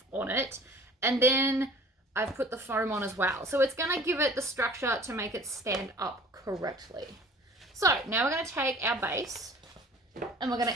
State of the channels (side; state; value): both; normal; correlation 0.48